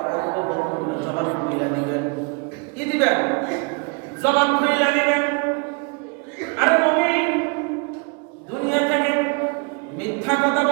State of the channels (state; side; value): quieter; left; 32.6 dB